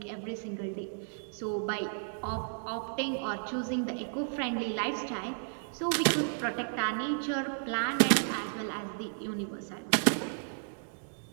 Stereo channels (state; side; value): silent; left; digital silence